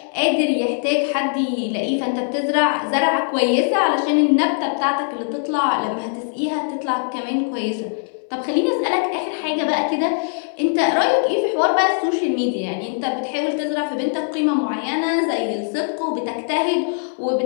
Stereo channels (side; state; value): right; silent; 63 dB below the other